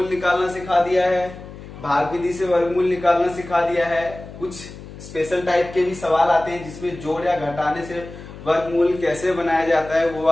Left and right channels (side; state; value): left; noise; hum, 15 dB below the sound